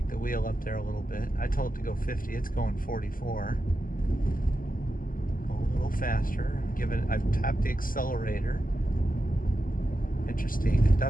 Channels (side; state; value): right; late; 0.41 ms